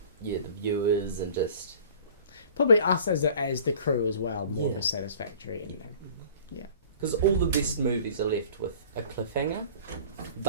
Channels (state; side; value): inverted; both; correlation -0.45